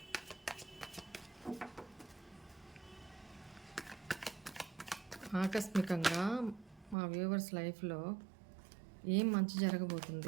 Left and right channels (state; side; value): drops out; left; at 7.0 s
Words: ఆకస్మికంగా మా వ్యూవర్స్ లైఫ్లో ఏం మంచి